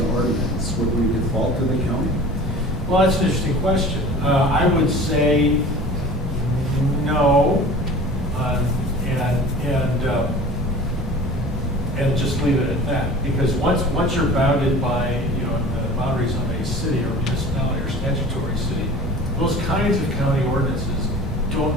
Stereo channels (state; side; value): normal; both; correlation 0.41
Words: ordinance, would we default to the county? Well, that's an interesting question. I would say no, and just leave it at that. Because once you're bounded by the boundaries of a city or municipality or statutory city, those kinds of county ordinances don't